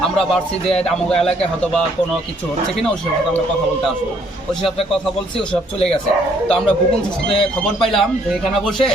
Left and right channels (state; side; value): normal; both; correlation 0.66